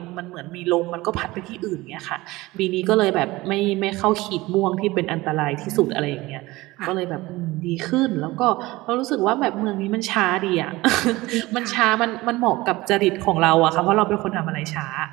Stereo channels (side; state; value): left; quieter; 19.9 dB